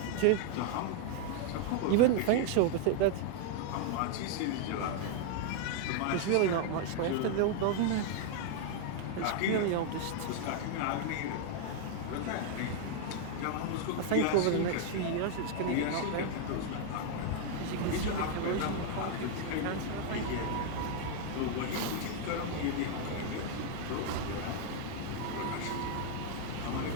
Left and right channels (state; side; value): different; both; correlation 0.00